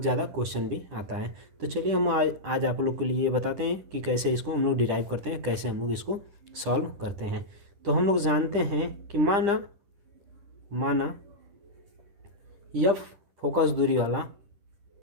ज़्यादा क्वेश्चन भी आता है। तो चलिए हम आज आप लोग के लिए बताते हैं कि कैसे इसको हम लोग डिराइव करते हैं, कैसे हम लोग इसको सॉल्व करते हैं। तो हम लोग जानते हैं कि माना यह फोकस दूरी वाला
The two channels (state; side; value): late; left; 10 ms